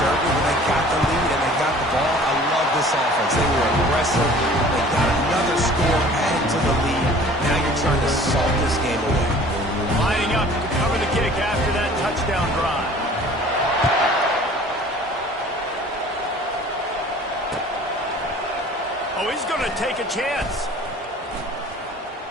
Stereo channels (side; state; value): both; normal; correlation 0.48